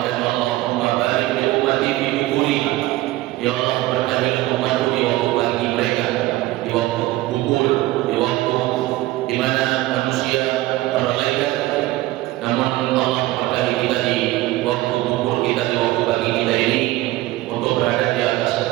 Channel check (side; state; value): left; quieter; 17.4 dB